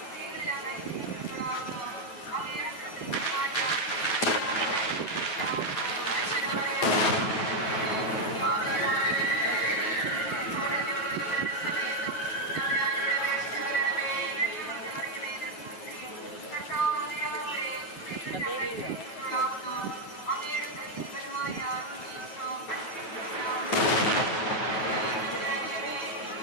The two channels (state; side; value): late; right; 9.2 ms